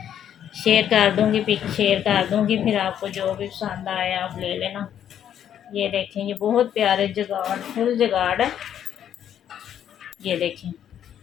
शेयर कर दूंगी, पिक शेयर कर दूंगी, फिर आपको जो भी पसंद आए आप ले लेना। ये देखें ये बहुत प्यारे जगाड़ फुल जगाड़ है। ये देखें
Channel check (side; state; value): right; quieter; 9.8 dB